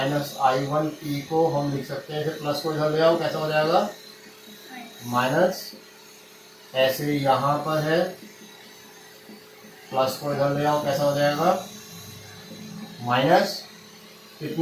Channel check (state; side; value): identical; both; correlation 1.00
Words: I1 T को हम लिख सकते हैं, इसे प्लस को इधर ले आओ, कैसा हो जाएगा माइनस, ऐसे यहाँ पर है प्लस को इधर ले आओ, कैसा हो जाएगा माइनस।